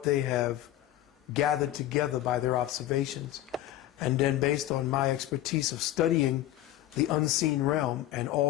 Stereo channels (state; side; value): quieter; right; 13.8 dB